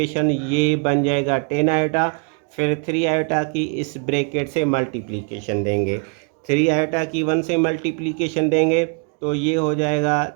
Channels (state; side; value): quieter; left; 37.9 dB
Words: ये बन जाएगा 10 आयोटा। फिर 3 आयोटा की इस ब्रैकेट से मल्टीप्लिकेशन देंगे। 3 आयोटा की 1 से मल्टीप्लिकेशन देंगे तो ये हो जाएगा